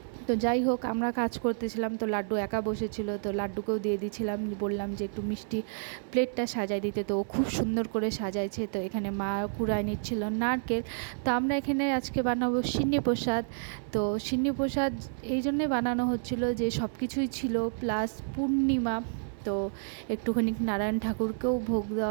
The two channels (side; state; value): left; silent; digital silence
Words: তো যাই হোক আমরা কাজ করতেছিলাম, তো লাড্ডু একা বসেছিল, তো লাড্ডুকেও দিয়ে দিয়েছিলাম, বললাম যে একটু মিষ্টি প্লেটটা সাজাই দিতে, তো ও খুব সুন্দর করে সাজাইছে। তো এখানে মা কুড়ায় নিচ্ছিল নারকেল। তো আমরা এখানে আজকে বানাবো সিন্নি প্রসাদ। তো সিন্নি প্রসাদ এই জন্যে বানানো হচ্ছিল যে সব কিছুই ছিল, প্লাস পূর্ণিমা, তো একটুখানি নারায়ণ ঠাকুরকেও ভোগ